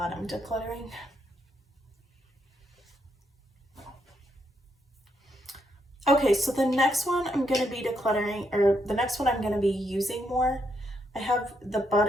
I'm decluttering. Okay, so the next one I'm gonna be decluttering, or the next one I'm gonna be using more. I have the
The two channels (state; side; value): normal; both; correlation 0.78